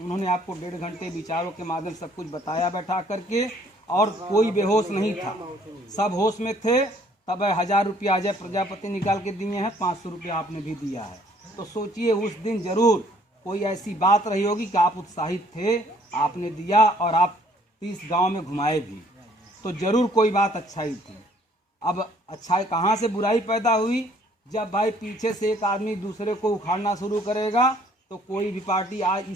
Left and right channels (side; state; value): both; normal; correlation 0.61